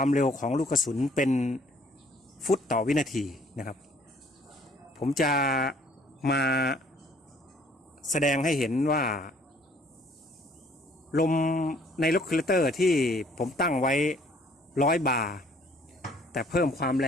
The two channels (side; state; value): both; normal; correlation 0.59